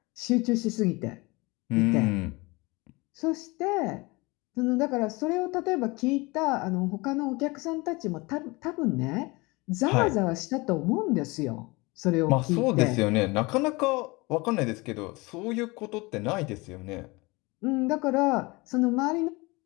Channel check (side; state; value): right; quieter; 24.6 dB